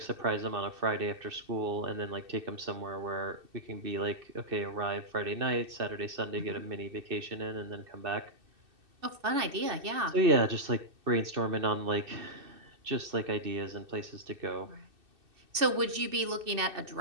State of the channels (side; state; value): left; late; 2.6 ms